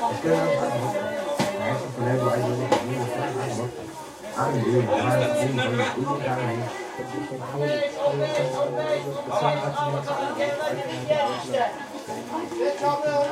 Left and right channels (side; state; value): both; identical; correlation 1.00